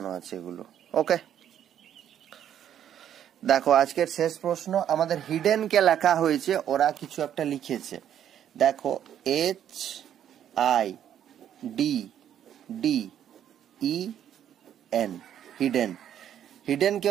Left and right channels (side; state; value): left; quieter; 10.1 dB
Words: আছে এগুলো। ওকে, দেখো আজকের শেষ প্রশ্ন আমাদের হিডেন কে লেখা হয়েছে, ওরা কিছু একটা লিখেছে। দেখো HIDDEN, হিডেন। হিডেন কে